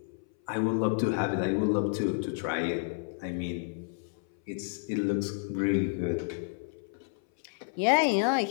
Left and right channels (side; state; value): right; silent; 58 dB below the other